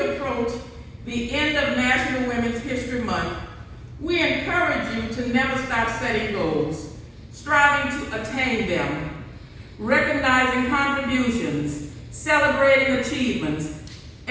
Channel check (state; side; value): identical; both; correlation 1.00